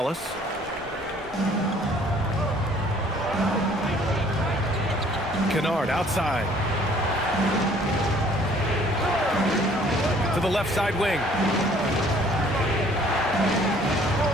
Kennard outside. To the left side wing.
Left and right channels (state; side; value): normal; both; correlation 0.57